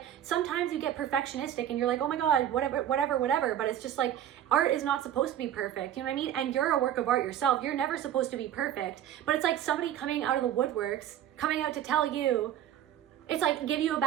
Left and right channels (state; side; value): quieter; left; 11.0 dB